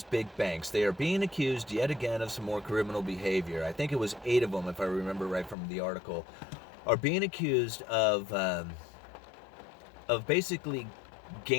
big banks. They are being accused yet again of some more criminal behavior. I think it was 8 of them, if I remember right from the article, are being accused of basically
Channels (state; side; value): drops out; right; at 5.6 s